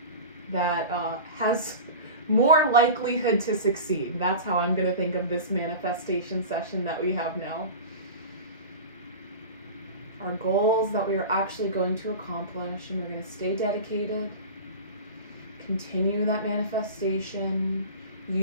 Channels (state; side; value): inverted; both; correlation -0.32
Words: that has more likelihood to succeed. That's how I'm going to think of this manifestation session that we have now. Our goals that we are actually going to accomplish, and we're going to stay dedicated, continue that manifestation,